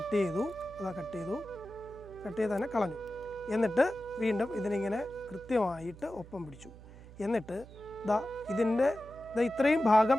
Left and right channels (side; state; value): right; noise; hum, 18 dB below the sound